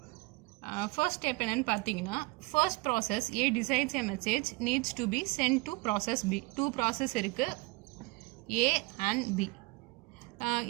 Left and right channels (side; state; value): left; quieter; 24.4 dB